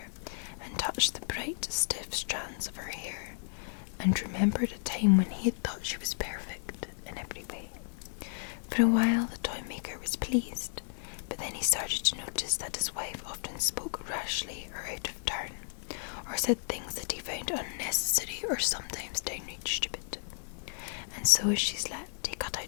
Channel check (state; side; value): silent; right; digital silence